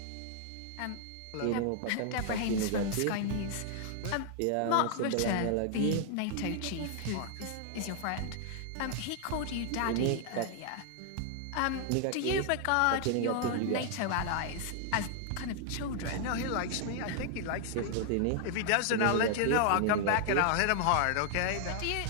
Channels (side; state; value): both; different; correlation 0.00